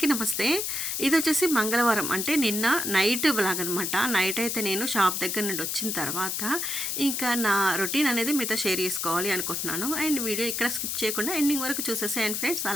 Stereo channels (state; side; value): noise; left; hiss, 2 dB below the sound